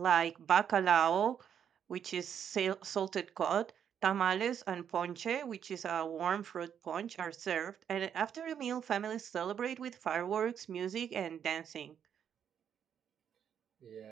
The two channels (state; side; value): quieter; left; 8.5 dB